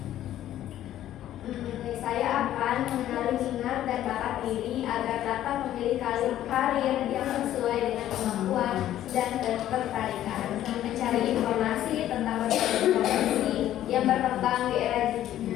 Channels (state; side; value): quieter; right; 12.5 dB